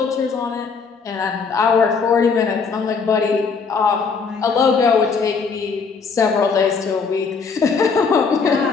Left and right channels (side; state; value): right; quieter; 5.2 dB